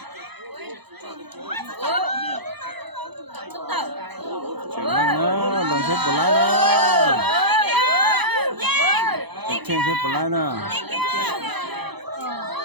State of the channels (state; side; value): late; left; 0.98 ms